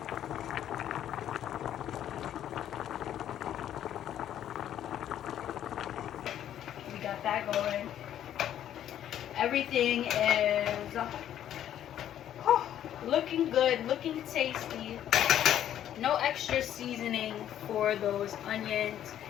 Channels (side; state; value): right; quieter; 10.9 dB